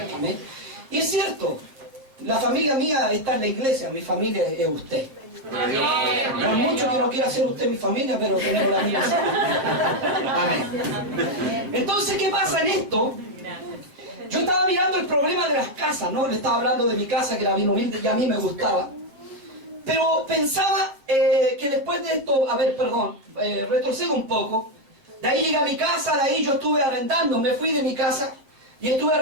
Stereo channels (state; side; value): late; left; 7.3 ms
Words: Amén. Y es cierto, la familia mía está en la iglesia, mi familia es usted. No es mucho que no quiera ser usted mi familia, pero tenemos la misma. Amén. Entonces, ¿qué pasa en esto? Yo estaba mirando el problema de las casas, ¿no? Le estaba hablando de mi casa, que era bien humilde y a mí me gustaba. Pero pensaba que después de esto, retrocedo un poco. De ahí llegué a mi casa, de ahí yo estuve arrendando, me fui de mi casa y estuve